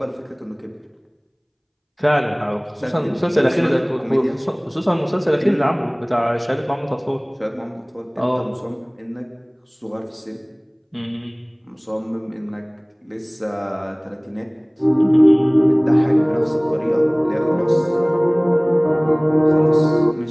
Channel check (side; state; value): both; identical; correlation 1.00